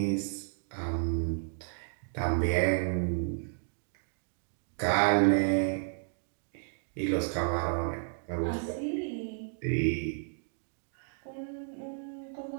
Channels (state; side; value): silent; left; digital silence